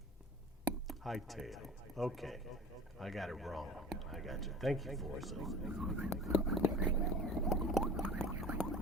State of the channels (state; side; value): normal; both; correlation 0.40